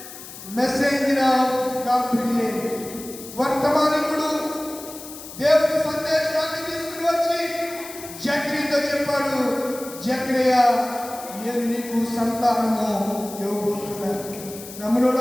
మెసెంజర్ ఆఫ్ గాబ్రియల్ వర్తమానికుడు దేవుని సందేశాన్ని తీసుకుని వచ్చి జకరియాతో చెప్పాడు, జకరియా నేను నీకు సంతానము ఇవ్వబోతున్నాను.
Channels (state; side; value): noise; left; hiss, 14 dB below the sound